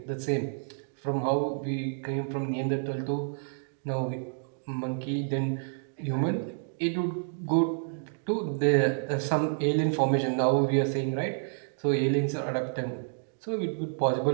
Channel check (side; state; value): left; silent; digital silence